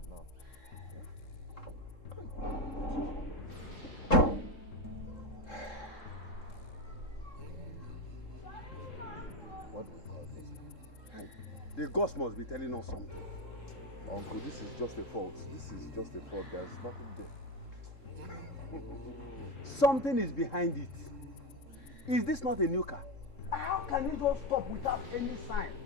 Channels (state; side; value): late; right; 3.7 ms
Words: now? Eh? What do we call this? Hey, the ghost must be telling us something. Uncle, this is just a fault. This is just a fault. There's nothing there. Something is behind it. Is this not a new car? How can it just stop without any sign?